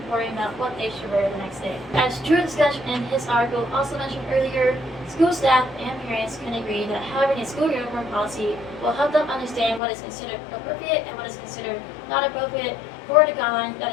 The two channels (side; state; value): right; drops out; at 9.8 s